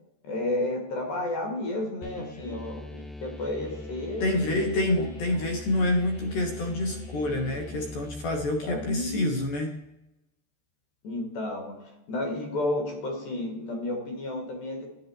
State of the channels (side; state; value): right; late; 14 ms